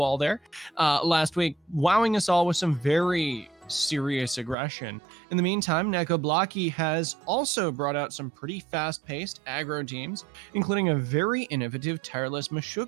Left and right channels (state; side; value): drops out; left; at 4.5 s